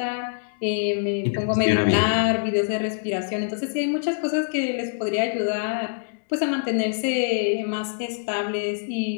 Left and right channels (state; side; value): silent; right; digital silence